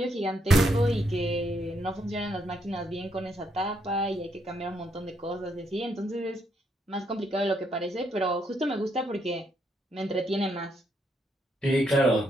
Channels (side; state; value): both; normal; correlation 0.75